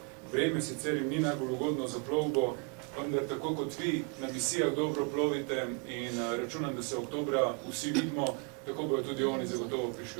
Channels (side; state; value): left; quieter; 34.2 dB